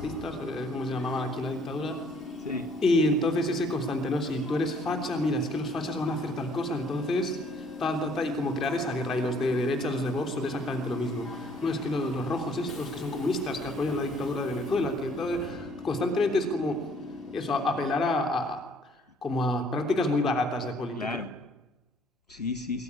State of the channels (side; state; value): both; normal; correlation 0.61